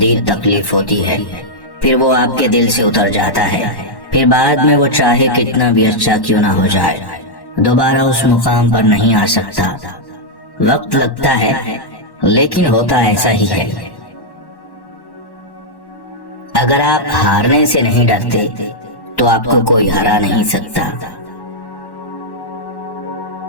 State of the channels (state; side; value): late; right; 1.1 ms